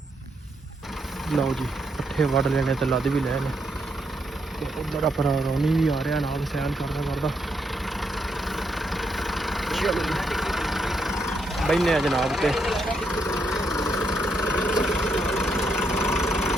ਲਓ ਜੀ ਪੱਠੇ ਵੱਢ ਲੈਣੇ ਤੇ ਲੱਦ ਵੀ ਲੈਣੇ ਤੇ ਉਧਰ ਆਪਣਾ ਰੌਣੀ ਵੀ ਆ ਰਿਹਾ ਨਾਲ ਸੈਲ ਕਰਦਾ ਚਲੋ ਬੈਨੇ ਆ ਜਨਾਬ ਤੇ।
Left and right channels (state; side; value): normal; both; correlation 0.78